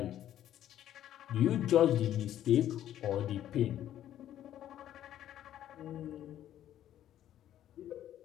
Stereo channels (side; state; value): right; quieter; 11.7 dB